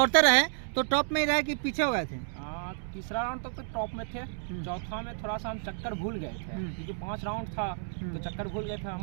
रहे तो टॉप में ही रहे कि पीछे हो गए थे? तीसरा राउंड तक तो टॉप में थे। चौथा में थोड़ा सा हम चक्कर भूल गए थे, क्योंकि 5 राउंड था तो चक्कर भूल गए थे। हम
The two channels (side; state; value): left; silent; digital silence